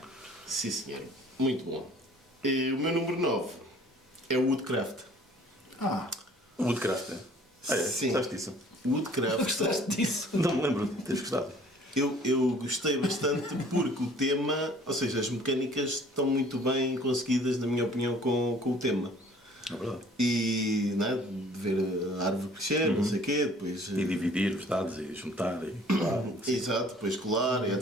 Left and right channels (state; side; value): normal; both; correlation 0.54